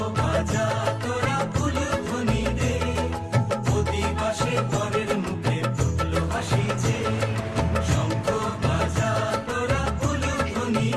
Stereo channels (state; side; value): identical; both; correlation 1.00